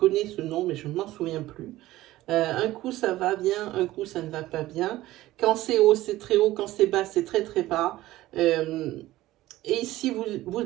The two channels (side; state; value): left; quieter; 16.3 dB